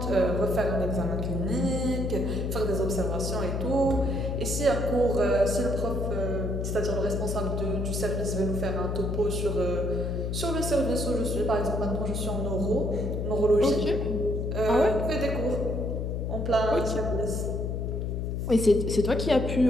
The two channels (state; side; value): noise; left; hum, 2 dB below the sound